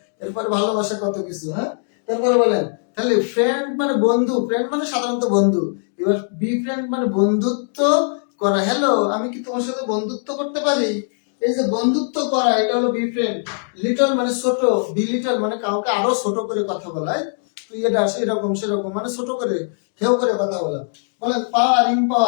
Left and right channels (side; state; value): right; silent; digital silence